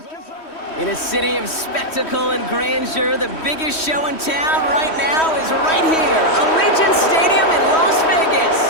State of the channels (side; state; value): right; late; 3.1 ms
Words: In a city of spectacle and grandeur, the biggest show in town right now is right here, Allegiant Stadium in Las